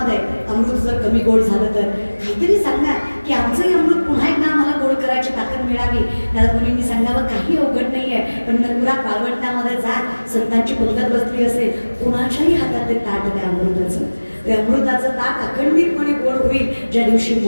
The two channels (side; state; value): both; inverted; correlation -1.00